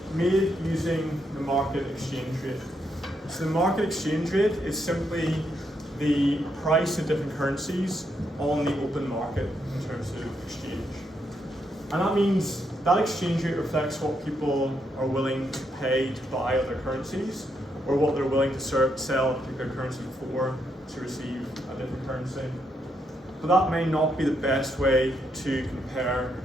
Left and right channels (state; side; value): normal; both; correlation 0.78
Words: made using the market exchange rate. So the market exchange rate is simply the price of different currencies on the open market in terms of exchange. And that means that exchange rate reflects what people are willing to pay to buy other currencies, or what they're willing to sell a particular currency for to receive a different currency. But that may not be the best way to compare